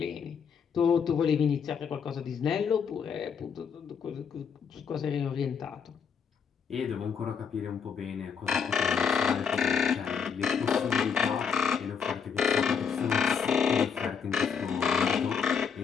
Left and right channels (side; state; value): right; quieter; 6.6 dB